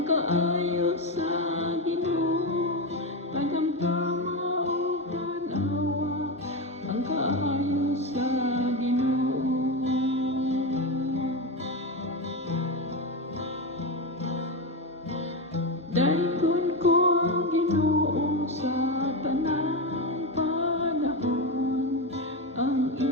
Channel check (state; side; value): normal; both; correlation 0.14